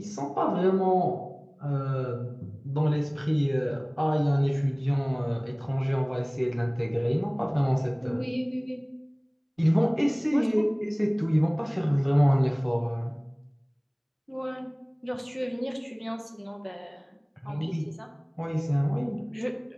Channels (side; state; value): both; identical; correlation 1.00